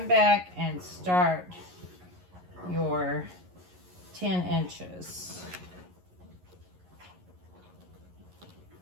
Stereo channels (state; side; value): late; left; 11 ms